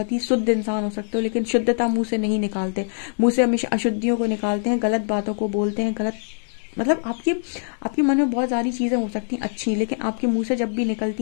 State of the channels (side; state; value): right; silent; digital silence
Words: ही शुद्ध इंसान हो सकते हो, लेकिन शुद्धता मुंह से नहीं निकालते, मुंह से हमेशा अशुद्धियों को निकालते हैं, गलत बातों को बोलते हैं, गलत मतलब आपके मन में बहुत सारी चीज़ें हो सकती हैं अच्छी, लेकिन आपके मुंह से जब भी